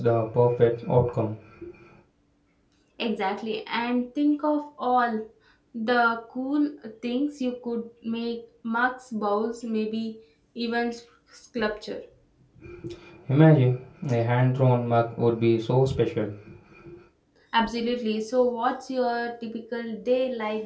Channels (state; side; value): identical; both; correlation 1.00